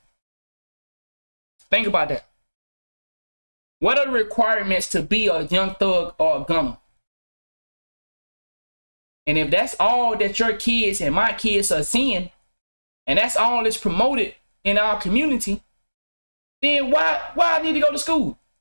Think about that. What are the requirements to be a young thug or a gunner? And if that's all that your kids and my kids are seeing, and that's all that's promoted in our community, then why I need to go to school?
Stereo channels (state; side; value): inverted; both; correlation -1.00